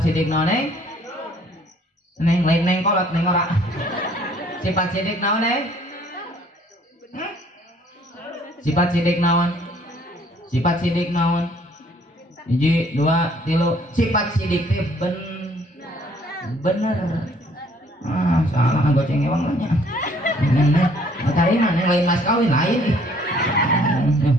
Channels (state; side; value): normal; both; correlation 0.60